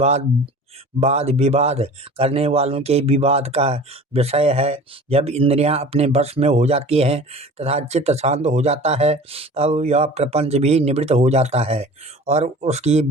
वाद विवाद करने वालों के विवाद का विषय है। जब इंद्रियां अपने वश में हो जाती हैं तथा चित्त शांत हो जाता है, तब यह प्रपंच भी निवृत्त हो जाता है और उसकी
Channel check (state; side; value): normal; both; correlation 0.41